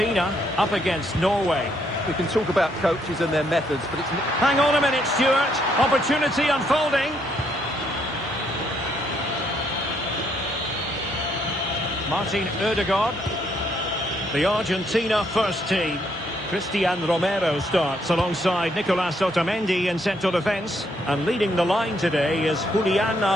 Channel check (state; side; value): normal; both; correlation 0.72